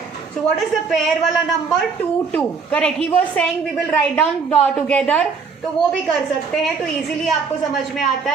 So what is the pair वाला number? 2 2. Correct. He was saying we will write down together. तो वो भी कर सकते हैं. तो इजीली आपको समझ में आता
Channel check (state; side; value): quieter; left; 5.2 dB